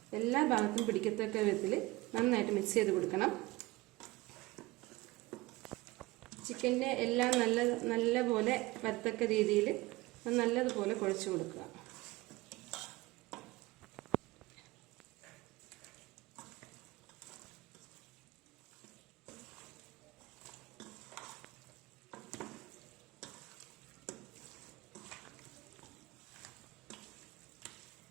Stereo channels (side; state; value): left; quieter; 20.6 dB